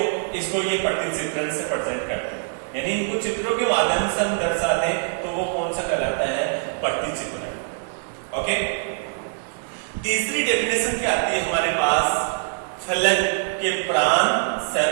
इसको ये प्रतिचित्रण से प्रेजेंट करते हैं, यानी इनको चित्रों के माध्यम से हम दर्शाते हैं, तो वो कौन सा कहलाता है? प्रतिचित्रण। ओके, तीसरी डेफिनेशन क्या आती है हमारे पास? फलन के प्राण,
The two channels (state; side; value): silent; left; digital silence